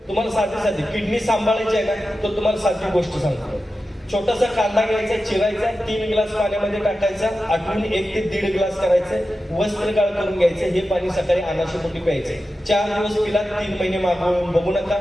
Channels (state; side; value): normal; both; correlation 0.92